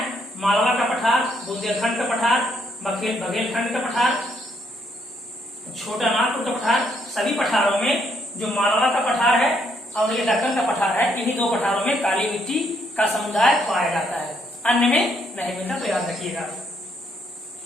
मालवा का पठार, बुंदेलखंड का पठार, बघेलखंड का पठार, छोटा नागपुर का पठार, सभी पठारों में जो मालवा का पठार है और ये दक्कन का पठार है, इन्हीं 2 पठारों में काली मिट्टी का समुदाय पाया जाता है, अन्य में नहीं मिलता। तो याद रखिएगा।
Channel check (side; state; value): both; normal; correlation 0.72